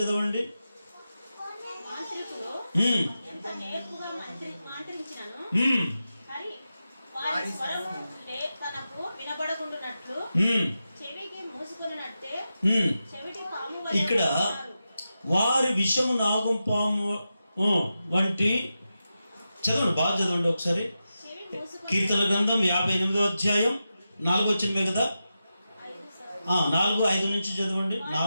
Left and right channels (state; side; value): inverted; both; correlation -0.90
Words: చదవండి. ఇక్కడ వారి విషము నాగుపాము వంటి, చదవండి, బాగా చదవండి ఒకసారి. కీర్తన గ్రంథం 58వ అధ్యాయం 4వ వచనమే కదా, 4, 5 నుంచి చదవండి.